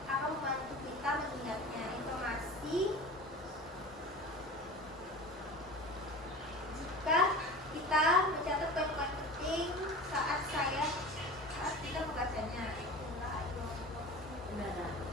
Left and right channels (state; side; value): normal; both; correlation 0.35